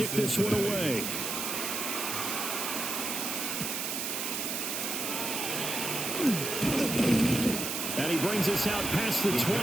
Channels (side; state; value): right; noise; hiss, 2 dB below the sound